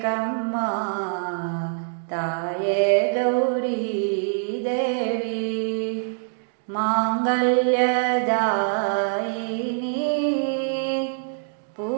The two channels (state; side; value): silent; left; digital silence